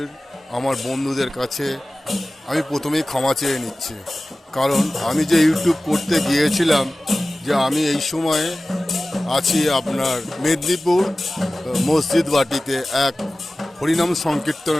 আমার বন্ধুদের কাছে আমি প্রথমেই ক্ষমা চেয়ে নিচ্ছি, কারণ আমি যে ইউটিউব করতে গিয়েছিলাম যে আমি এই সময়ে আছি আপনার মেদিনীপুর মসজিদ বাটিতে এক হরিনাম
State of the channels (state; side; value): normal; both; correlation 0.97